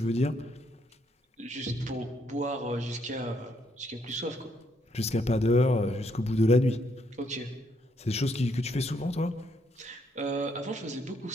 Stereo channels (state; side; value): normal; both; correlation 0.73